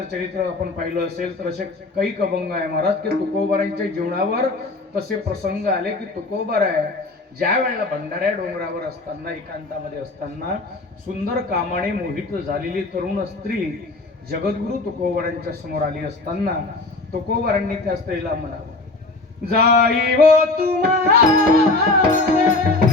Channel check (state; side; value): quieter; right; 3.2 dB